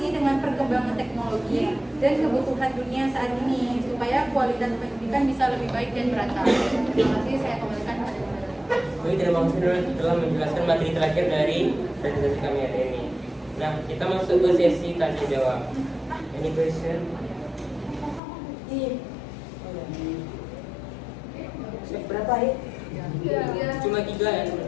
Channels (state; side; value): drops out; right; at 18.2 s